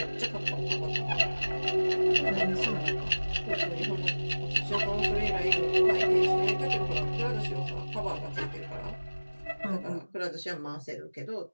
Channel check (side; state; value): both; inverted; correlation -1.00